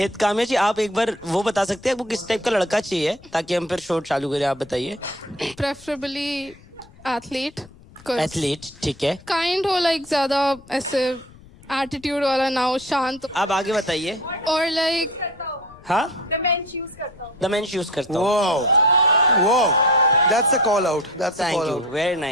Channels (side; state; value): left; noise; rumble, 23 dB below the sound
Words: काम्या जी, आप एक बार वो बता सकते हैं आपको किस टाइप का लड़का चाहिए, ताकि हम फिर शो चालू करें? आप बताइए। preferably athlete, एथलीट, ठीक है। काइंड हो, लाइक ज्यादा ऐसे एटीट्यूड वाला ना हो, शांत, आप आगे बताइए। और लाइक हाँ, द मेंस यूज करता हूँ। वो that's a call out, that's a thank call you, out. Very